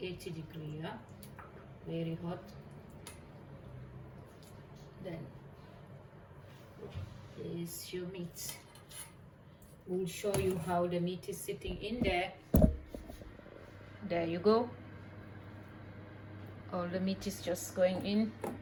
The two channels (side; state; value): both; identical; correlation 1.00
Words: degrees, yeah? Very hot. Then there's your meat. We'll show you how the meat is sitting in there. There you go. All the meat is just going in,